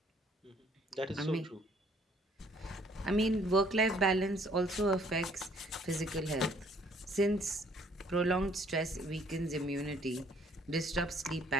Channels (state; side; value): normal; both; correlation 0.62